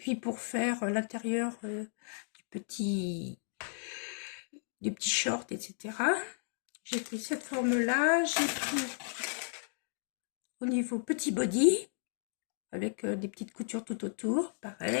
pour faire l'intérieur du petit short, etc. J'ai pris cette forme-là. J'ai pris au niveau petit body, avec des petites coutures tout autour,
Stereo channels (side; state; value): right; silent; digital silence